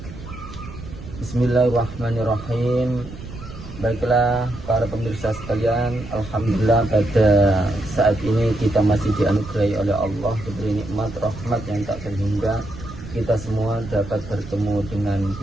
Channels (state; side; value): noise; right; rumble, 13 dB below the sound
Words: Bismillahirrahmanirrahim. Baiklah para pemirsa sekalian, alhamdulillah pada saat ini kita masih dianugerahi oleh Allah, diberi nikmat rahmat yang tak terhingga. Kita semua dapat bertemu dengan